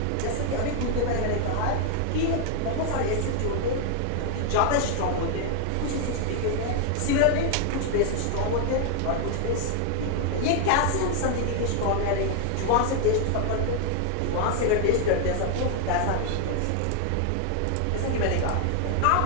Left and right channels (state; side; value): different; both; correlation 0.00